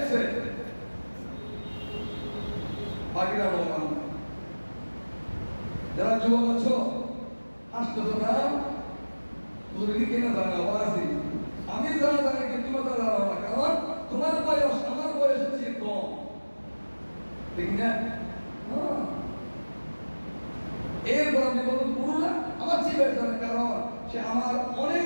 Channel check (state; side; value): inverted; both; correlation -1.00